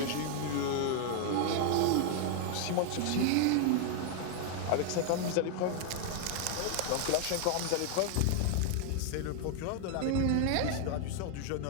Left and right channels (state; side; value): different; both; correlation 0.00